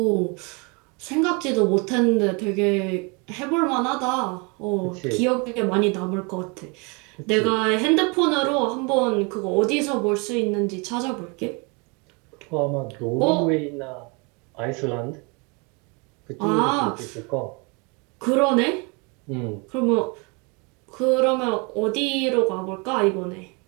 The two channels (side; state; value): left; quieter; 30.6 dB